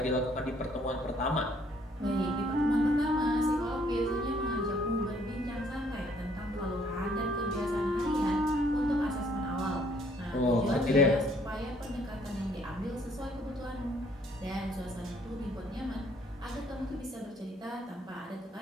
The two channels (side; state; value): both; normal; correlation 0.64